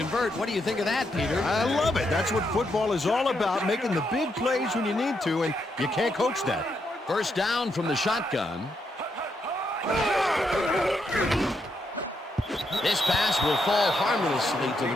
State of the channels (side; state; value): both; normal; correlation 0.79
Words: What do you think of that, Peter? I love it. That's what football is all about, making the big plays when you need to, and you can't coach that. 1st down from the shotgun. This pass will fall harmlessly to